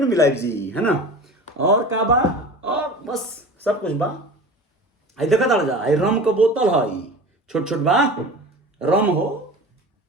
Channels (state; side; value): normal; both; correlation 0.36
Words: मिलाइब जी है ना। और का बा और बस सब कुछ बा। आई देखा ताड़ जा आई रम के बोतल है छोट छोट बा रम हो